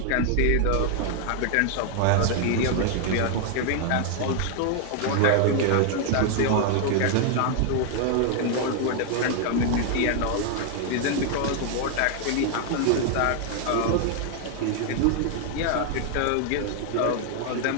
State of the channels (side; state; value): both; different; correlation 0.00